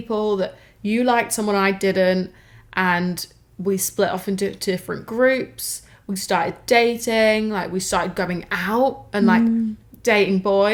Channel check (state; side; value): identical; both; correlation 1.00